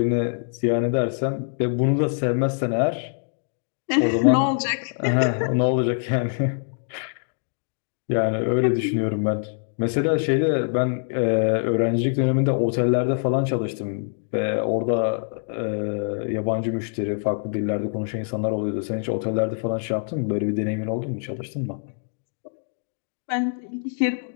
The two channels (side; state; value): right; silent; digital silence